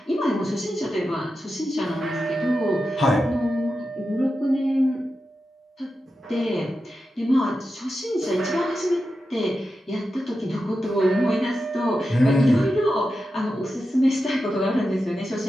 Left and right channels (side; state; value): both; normal; correlation 0.90